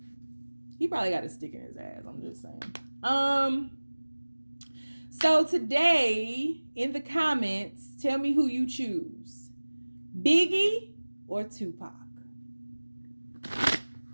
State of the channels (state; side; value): inverted; both; correlation -1.00